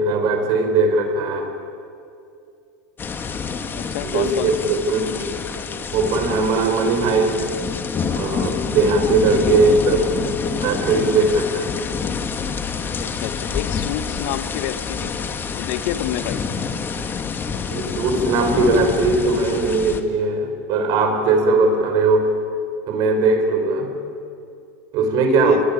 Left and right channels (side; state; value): both; normal; correlation 0.35